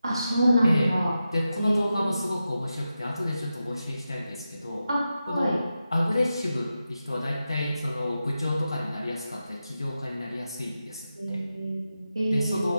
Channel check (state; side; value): inverted; both; correlation -0.90